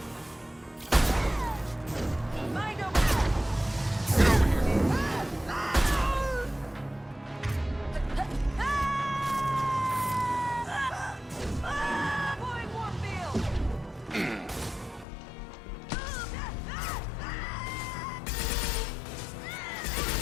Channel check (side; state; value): right; drops out; at 15.1 s